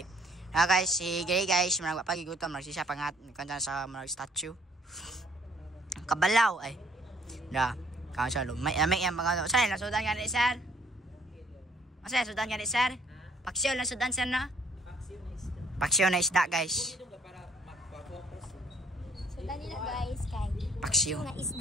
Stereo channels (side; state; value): both; normal; correlation 0.63